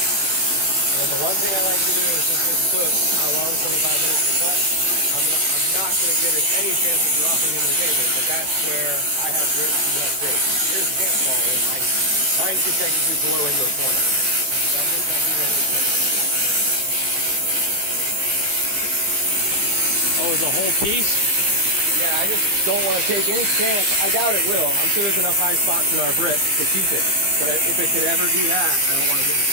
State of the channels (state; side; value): late; left; 15 ms